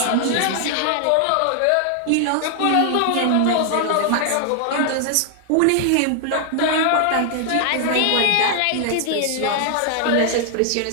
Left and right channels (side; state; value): both; different; correlation 0.00